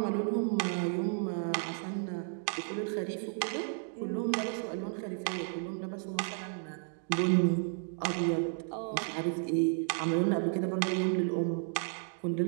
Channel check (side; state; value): left; silent; 56 dB below the other